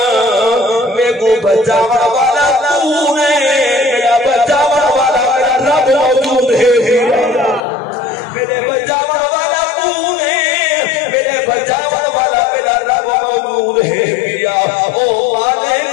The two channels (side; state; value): right; drops out; at 7.6 s